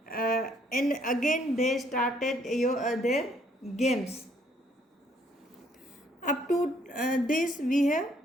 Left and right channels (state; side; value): normal; both; correlation 0.66